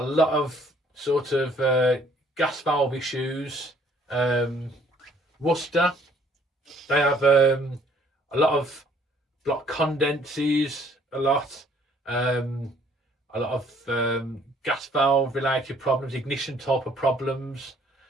lot of sort of gas valve issues. Worcester, they have a lot of block condenses, a lot of gas valve related problems, ignition type of problems.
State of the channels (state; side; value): normal; both; correlation 0.61